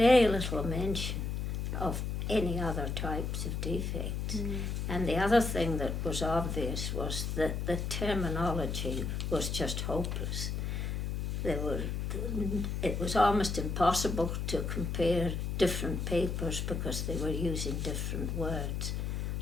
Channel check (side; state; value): left; noise; hum, 2 dB below the sound